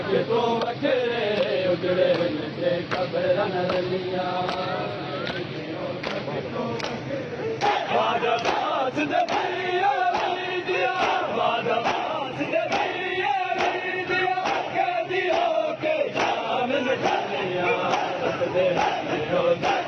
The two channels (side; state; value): both; identical; correlation 1.00